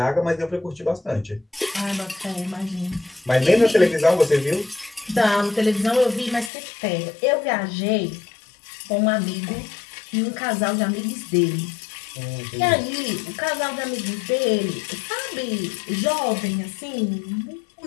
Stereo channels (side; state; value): right; drops out; at 6.5 s